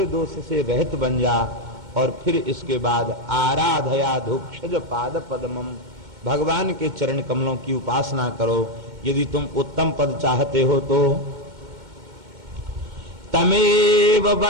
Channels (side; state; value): left; late; 2.1 ms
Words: दोष से रहित बन जा, और फिर इसके बाद आराधया धुक्षज पाद पद्मम, भगवान के चरण कमलों की उपासना करो। यदि तुम उत्तम पद चाहते हो तो तमेव